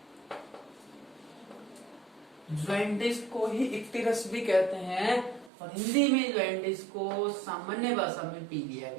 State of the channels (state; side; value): drops out; left; at 5.5 s